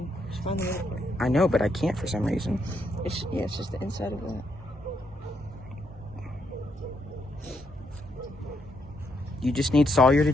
I know, but I can't for some reason. It's just the inside of that. You just need Sawyer to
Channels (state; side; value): normal; both; correlation 0.77